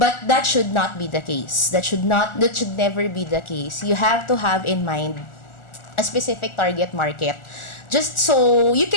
that should not be the case. That should never be the case. You have to have in mind a specific target market, just so you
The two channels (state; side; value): late; right; 1.4 ms